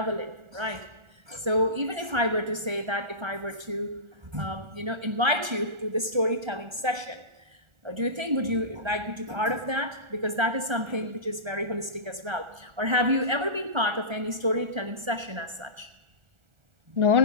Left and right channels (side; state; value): left; late; 1.3 ms